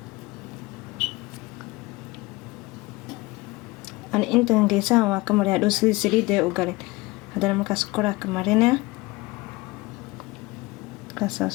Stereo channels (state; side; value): quieter; right; 22.3 dB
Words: أنا أنت نجيسها وكمري هادو سليدة وقالين هذا مركز كورا كمرينا كاسا